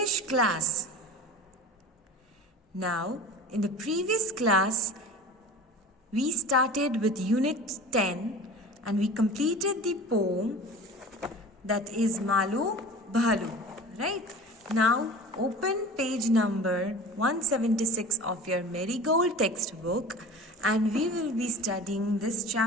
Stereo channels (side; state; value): both; normal; correlation 0.37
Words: class. Now, in the previous class, we started with Unit 10 and we completed the poem that is Malu Bhalu, right? Now, open page number 176 of your Marigold textbook and we will be studying this